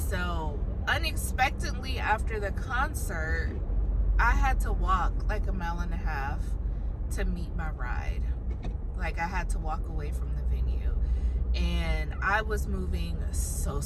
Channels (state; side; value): identical; both; correlation 1.00